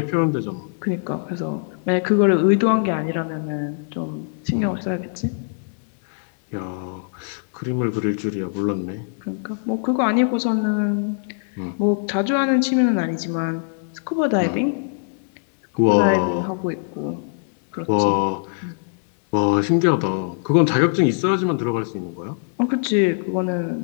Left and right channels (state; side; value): silent; right; digital silence